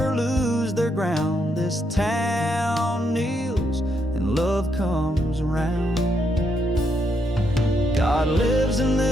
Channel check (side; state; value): both; normal; correlation 0.77